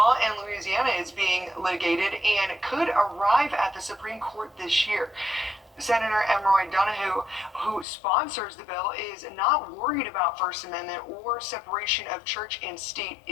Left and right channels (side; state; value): right; drops out; at 7.9 s